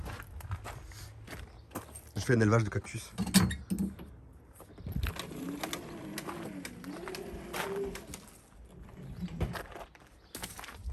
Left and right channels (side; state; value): both; identical; correlation 1.00